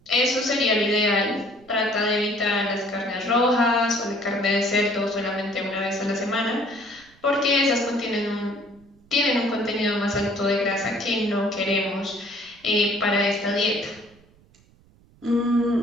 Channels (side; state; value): right; noise; rumble, 29 dB below the sound